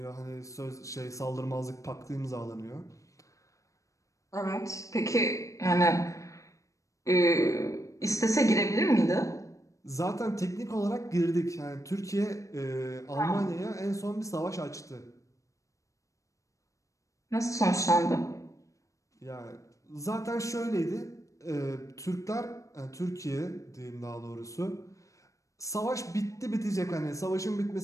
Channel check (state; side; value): late; right; 0.15 ms